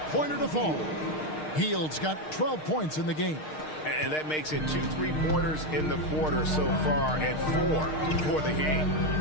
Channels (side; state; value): right; late; 6.5 ms